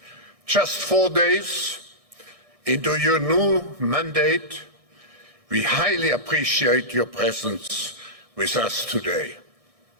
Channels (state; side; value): late; left; 1.6 ms